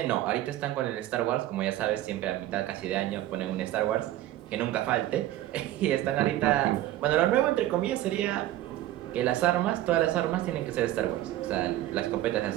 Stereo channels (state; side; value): quieter; left; 14.4 dB